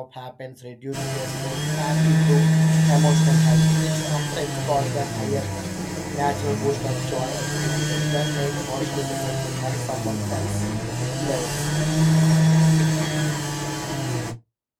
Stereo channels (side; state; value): both; identical; correlation 1.00